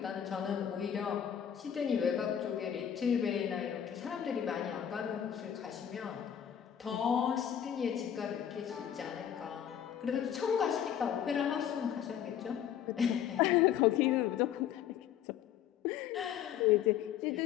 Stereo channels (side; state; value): right; quieter; 9.6 dB